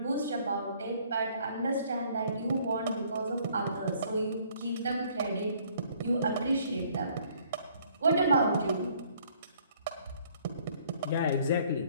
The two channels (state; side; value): inverted; both; correlation -0.61